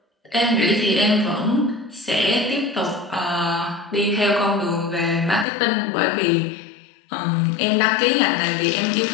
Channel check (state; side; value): drops out; right; at 5.5 s